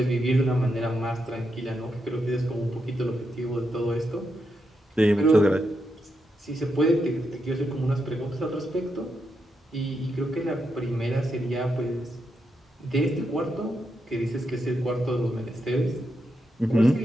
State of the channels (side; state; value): both; normal; correlation 0.84